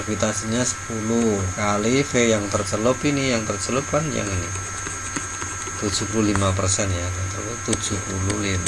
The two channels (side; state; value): both; identical; correlation 1.00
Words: 10 kali V yang tercelup, ini yang tercelup kan yang ini 75% ya,